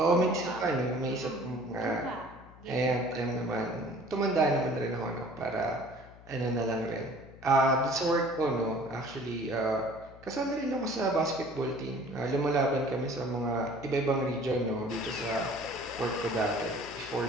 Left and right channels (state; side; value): noise; left; hum, 21 dB below the sound